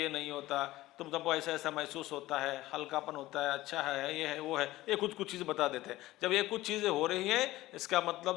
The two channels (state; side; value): quieter; right; 17.1 dB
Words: नहीं होता, तुम सबको ऐसा ऐसा महसूस होता है, हल्कापन होता है, अच्छा है, ये है, वो है, ये कुछ चीज़ें बता देते हैं। जब ये कुछ चीज़ें हो रही हैं, इसका